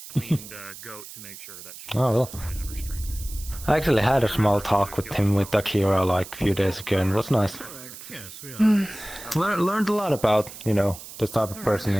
cleaned goat to make sure that she Oh, well. has her strength. I actually had a small talk with him with Akira like a few days ago and it was nice. Learned a lot about, you know, the type of person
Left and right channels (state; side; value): noise; right; hiss, 14 dB below the sound